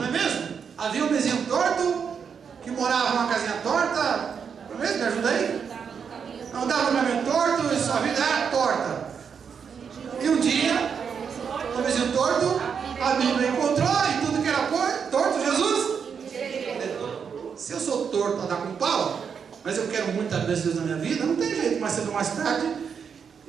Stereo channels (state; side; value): quieter; left; 6.7 dB